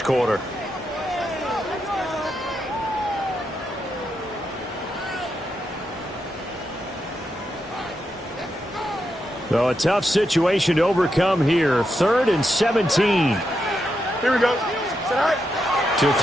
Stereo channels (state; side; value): normal; both; correlation 0.84